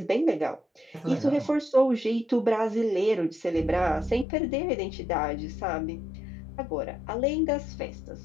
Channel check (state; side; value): drops out; right; at 4.2 s